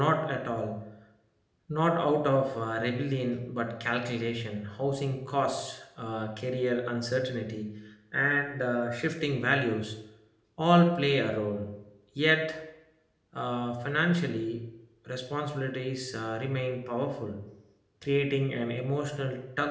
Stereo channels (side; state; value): both; identical; correlation 1.00